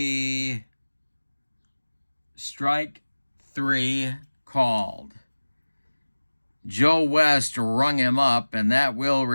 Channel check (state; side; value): inverted; both; correlation -1.00